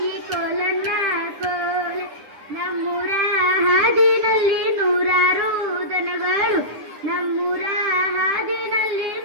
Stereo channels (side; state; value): left; late; 9.7 ms